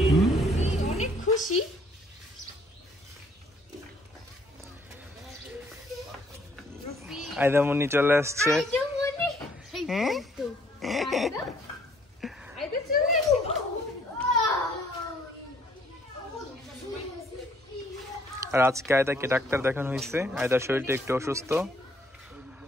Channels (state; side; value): normal; both; correlation 0.63